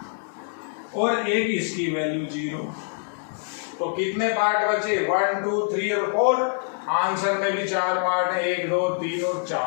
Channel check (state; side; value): silent; right; 57 dB below the other